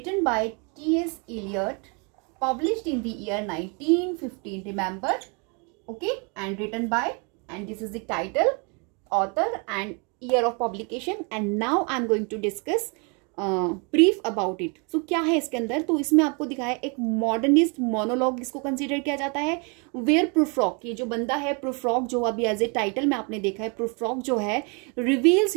by T.S. Eliot, published in the year 1915, remember, okay, and written by, and this is the title, author and year of publication, and now I'm going to discuss brief about it. So क्या है इसके अंदर, तो इसमें आपको दिखाया एक modernist monologue इसको कंसिडर किया जाता है, वेयर प्रूफ्रॉक, ये जो बंदा है प्रूफ्रॉक, जो अभी एज ए टाइटल में आपने देखा है, प्रूफ्रॉक जो है रिवील्स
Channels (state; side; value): quieter; left; 34.1 dB